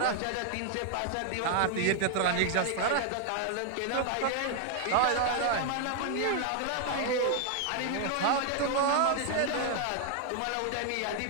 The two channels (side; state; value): both; different; correlation 0.00